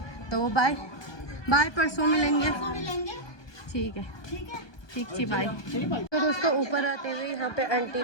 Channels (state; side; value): late; right; 1.2 ms